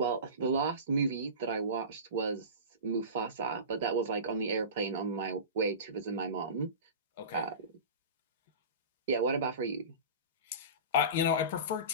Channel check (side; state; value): both; inverted; correlation -0.31